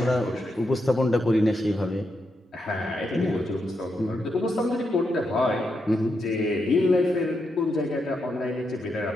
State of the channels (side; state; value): both; normal; correlation 0.83